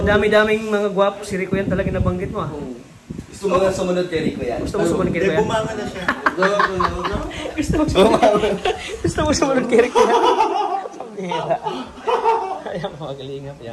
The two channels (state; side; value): identical; both; correlation 1.00